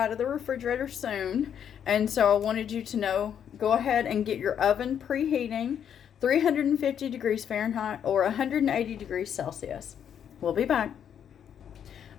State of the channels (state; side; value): quieter; right; 8.7 dB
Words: of the refrigerator soon, and so I wanted you to know, go ahead and get your oven preheating, 350 degrees Fahrenheit or 180 degrees Celsius. We'll be back.